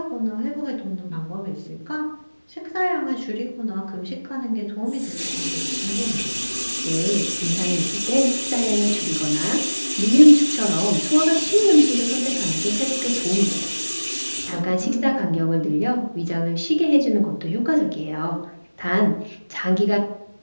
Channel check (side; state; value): both; inverted; correlation -1.00